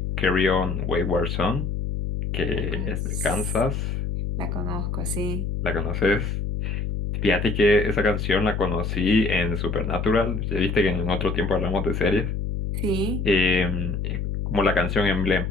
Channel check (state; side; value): noise; left; hum, 2 dB below the sound